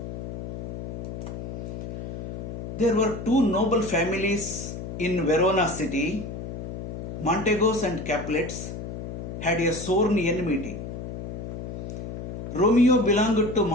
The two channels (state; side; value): noise; left; hum, 7 dB below the sound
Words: There were two noble families in Verona city. Montegos and Capulets had a sworn enmity. Romeo belonged to